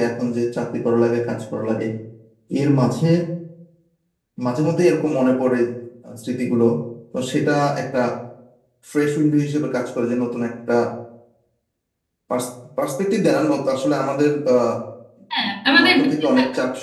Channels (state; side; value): identical; both; correlation 1.00